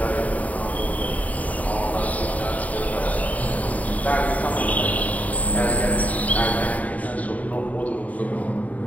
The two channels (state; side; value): late; right; 0.072 ms